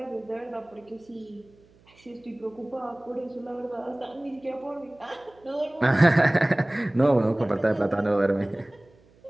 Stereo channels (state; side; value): noise; right; hum, 30 dB below the sound